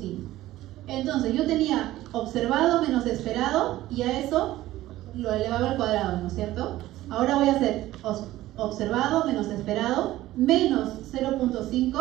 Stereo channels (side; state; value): left; quieter; 15.6 dB